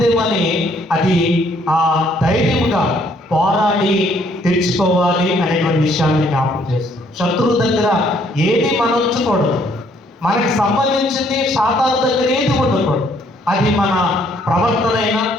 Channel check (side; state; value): both; normal; correlation 0.66